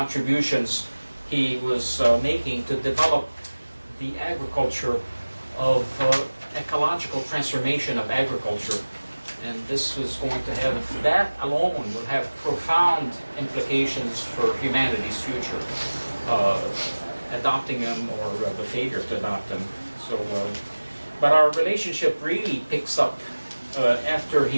he was making to develop the agriculture of ecological transformation of agriculture. And this was going to have, that alone will have profound implications for humanity's future, adopting them or the failure to adopt them. So, but our relationship really picks up after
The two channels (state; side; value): inverted; both; correlation -1.00